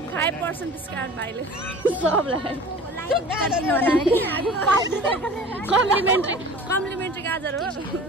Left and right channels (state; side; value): normal; both; correlation 0.42